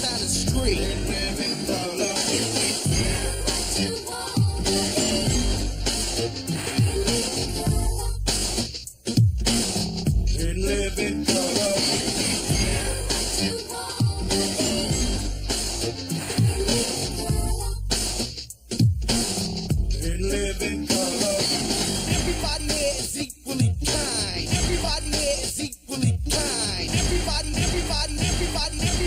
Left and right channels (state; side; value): identical; both; correlation 1.00